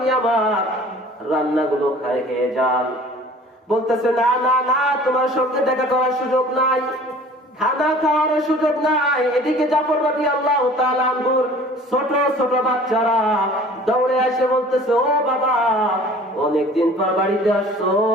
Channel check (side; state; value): both; normal; correlation 0.48